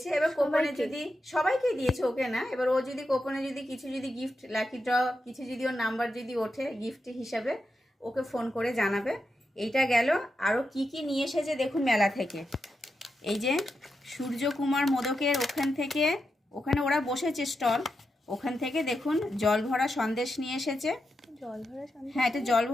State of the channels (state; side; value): normal; both; correlation 0.87